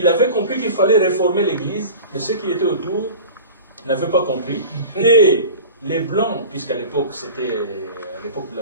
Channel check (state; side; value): inverted; both; correlation -0.36